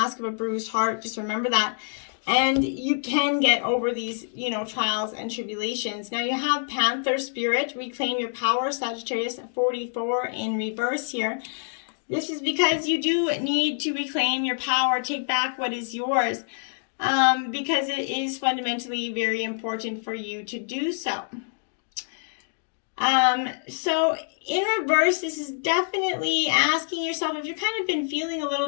of a bruised heart. Just remember that. And you can get over these, trials and tribulations. Now you have Panther Spirit, reclaim your power, Sagittarius 44 in reverse here. This is because you do need to reclaim your power, take back what is yours, because it is fundamentally very important for you to do so. So in reverse, this is definitely asking yourself if you've kind of been feeling a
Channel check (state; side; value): silent; right; digital silence